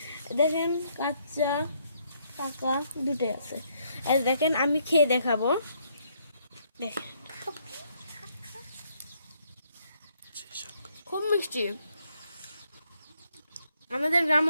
দেখেন কাঁচা পাকা দুটোই আছে। আর দেখেন আমি খেয়ে দেখাবো, দেখেন খুব মিষ্টি। আমাদের গ্রাম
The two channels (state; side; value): inverted; both; correlation -0.72